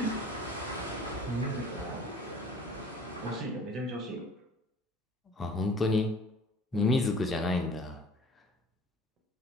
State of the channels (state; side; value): normal; both; correlation 0.49